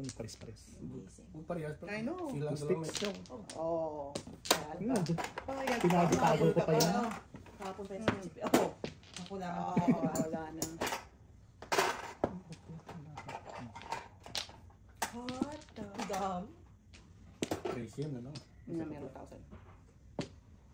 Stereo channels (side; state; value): both; identical; correlation 1.00